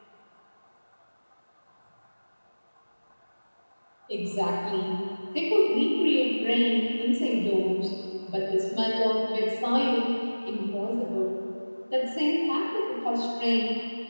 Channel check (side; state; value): both; inverted; correlation -1.00